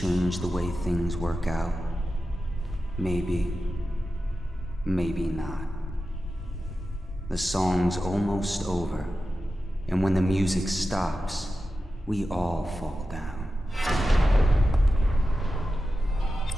the way things work out? Maybe. Maybe not. The song's almost over, and when the music stops, we all fall down.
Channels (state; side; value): normal; both; correlation 0.92